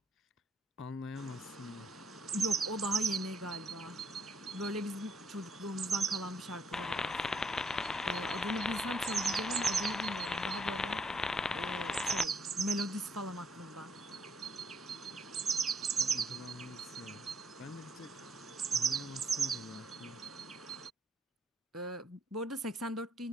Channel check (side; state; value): both; normal; correlation 0.70